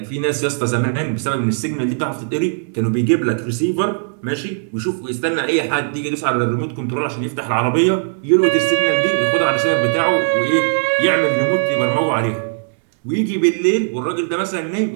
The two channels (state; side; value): silent; left; 67 dB below the other